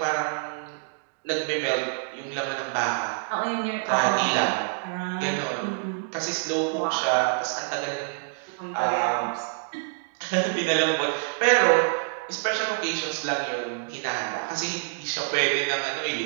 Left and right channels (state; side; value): silent; left; digital silence